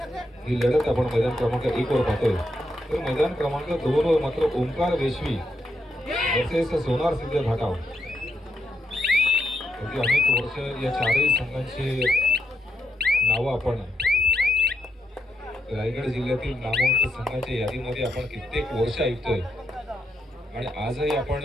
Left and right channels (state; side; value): normal; both; correlation 0.81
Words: ही लढत आपण मैदान क्रमांक 1 वर पाहतोय. तर मैदान क्रमांक 2 वर मात्र ओंकार वेशवी वर्सेस सोनार सिद्ध घाटाव. अनेक वर्ष या चारही संघांची नावं आपण रायगड जिल्ह्यातील नामवंत संघाच्या यादीमध्ये आपण कित्येक वर्ष ऐकतोय. आणि आजही आपण